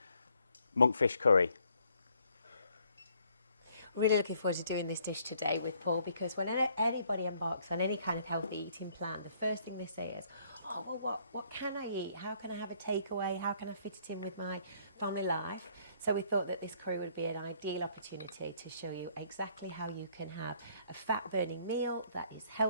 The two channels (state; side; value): inverted; both; correlation -0.65